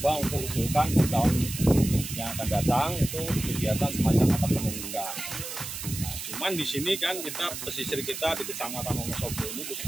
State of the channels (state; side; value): noise; right; hiss, 7 dB below the sound